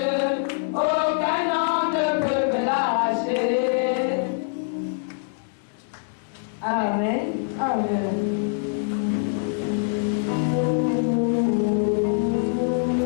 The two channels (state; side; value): silent; right; digital silence